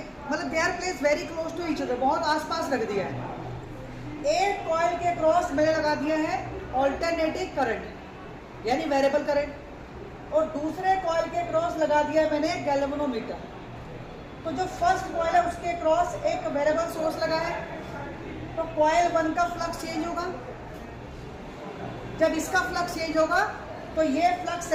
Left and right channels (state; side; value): identical; both; correlation 1.00